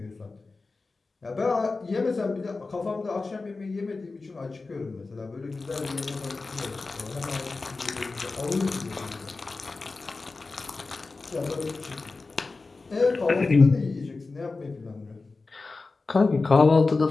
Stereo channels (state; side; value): quieter; right; 3.8 dB